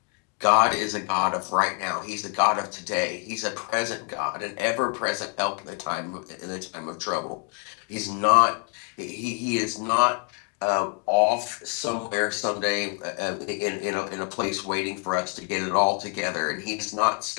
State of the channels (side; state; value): right; quieter; 36.9 dB